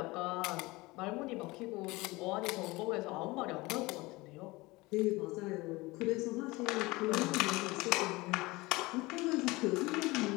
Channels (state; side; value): quieter; right; 22.0 dB